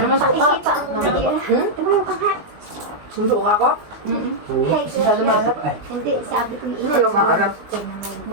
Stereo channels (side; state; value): left; late; 20 ms